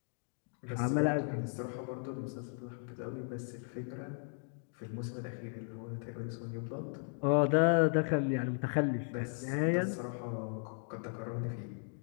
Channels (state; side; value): silent; right; 54 dB below the other